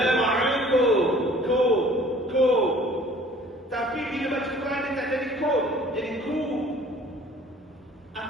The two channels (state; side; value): normal; both; correlation 0.52